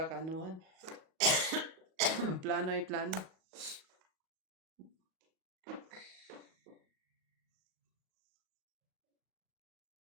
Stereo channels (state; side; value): late; left; 37 ms